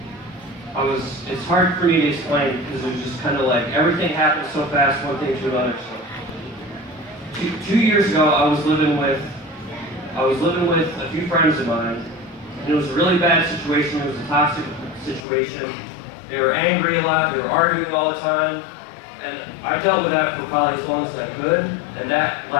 it's hard for me to explain because it was just kind of like everything happened so fast, one thing to another. So, 2 years ago, I was living with a few friends of mine, and it was a really bad situation. It was a toxic situation. They were angry a lot. They were arguing all the time, and I dealt with that for probably as long as I could, and that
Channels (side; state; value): right; drops out; at 15.2 s